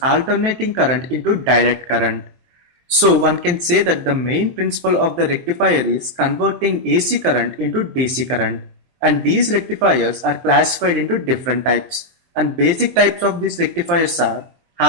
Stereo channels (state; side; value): late; left; 23 ms